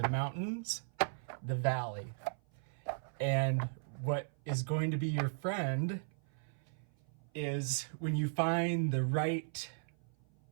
mountains, the valley. And what is going to be your friend is when you find the right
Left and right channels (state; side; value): silent; left; 53 dB below the other